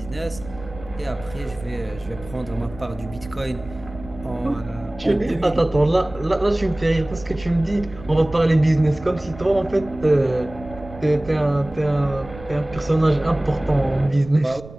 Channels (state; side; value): noise; right; rumble, 17 dB below the sound